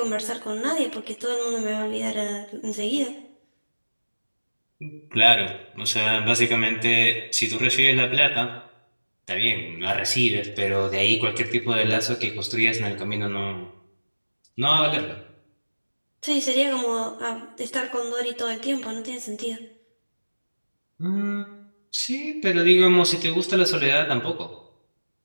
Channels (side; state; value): both; inverted; correlation -1.00